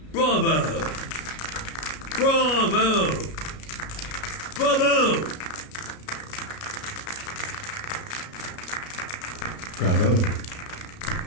Bravo! Bravo! Bravo! Bravo.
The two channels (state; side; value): late; right; 33 ms